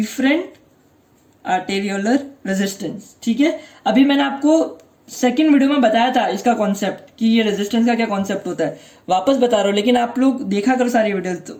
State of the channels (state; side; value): identical; both; correlation 1.00